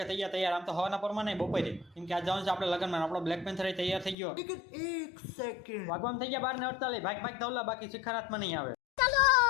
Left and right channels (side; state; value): right; drops out; at 4.2 s